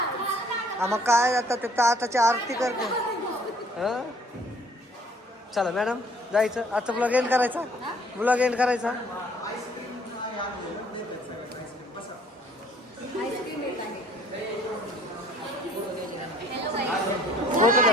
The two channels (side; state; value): both; normal; correlation 0.58